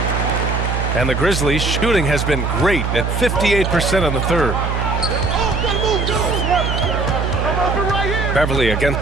And the Grizzlies' shooting has been great at 58% in the third. Beverly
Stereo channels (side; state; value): right; noise; hum, 1 dB below the sound